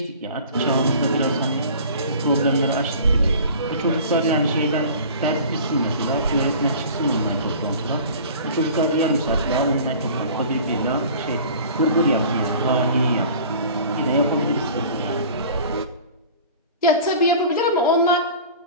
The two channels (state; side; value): inverted; both; correlation -0.43